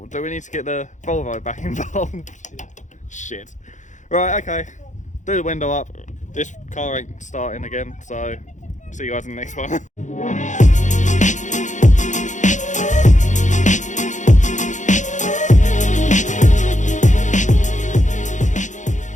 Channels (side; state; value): right; late; 0.35 ms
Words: Do we need to get the Volvo back involved? Yeah. Shit. Right, okay. Do the window up. This car ain't starting again, so see you guys in the next one.